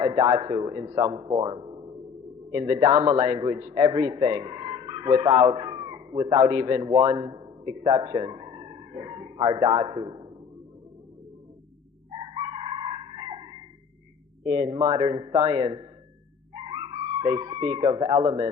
a dhatu in some form. In the Dhamma language, everything, without even one exception, are dhatus. In modern science, they speak of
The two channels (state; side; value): quieter; right; 6.4 dB